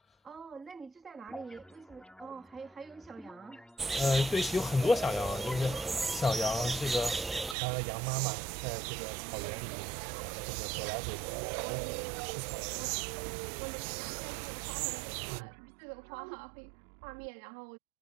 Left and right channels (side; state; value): left; drops out; at 7.6 s